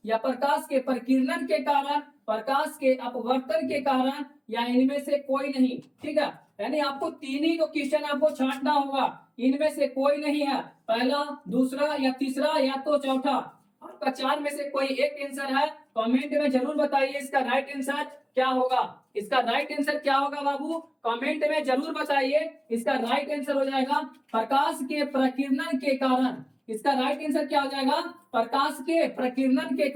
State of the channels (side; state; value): both; identical; correlation 1.00